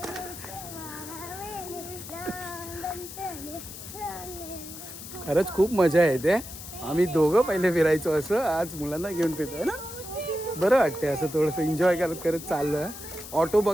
खरंच खूप मजा येते. आम्ही दोघं पहिले फिरायचो असं, आज मुलांना घेऊन फिरतोय ना, बरं वाटते असं थोडंसं एन्जॉय करत करत चाललं. ऑटो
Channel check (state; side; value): noise; left; hiss, 12 dB below the sound